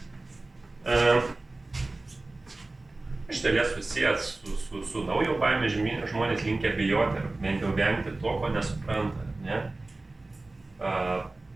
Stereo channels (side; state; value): left; quieter; 3.1 dB